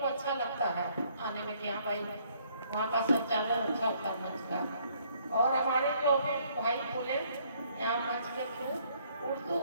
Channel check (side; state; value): both; inverted; correlation -0.65